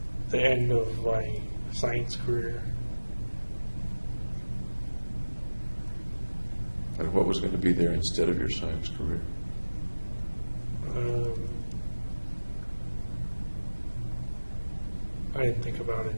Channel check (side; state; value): both; inverted; correlation -1.00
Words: The end of my science career. And what was going to be there instead of your science career? I didn't think about it.